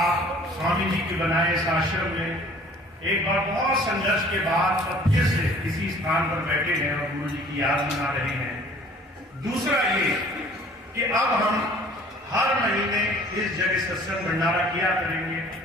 स्वामी जी के बनाए इस आश्रम में एक बार बहुत संघर्ष के बाद फिर से इसी स्थान पर बैठे हैं और गुरु जी की याद मना रहे हैं। दूसरा ये कि अब हम हर महीने इस जगह सत्संग भंडारा किया करेंगे,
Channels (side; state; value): both; normal; correlation 0.52